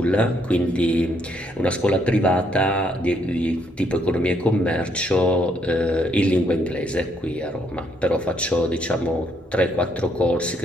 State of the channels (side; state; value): both; normal; correlation 0.71